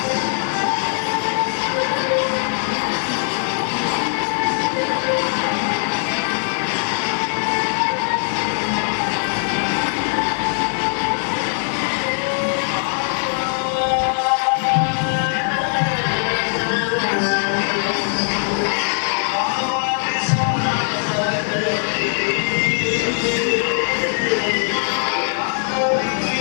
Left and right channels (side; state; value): right; silent; 64 dB below the other